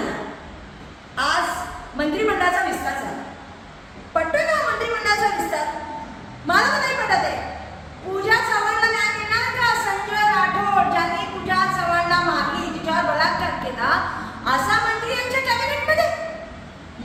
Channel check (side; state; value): both; identical; correlation 1.00